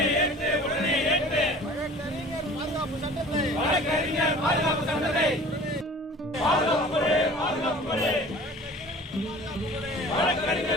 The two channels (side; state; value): both; normal; correlation 0.45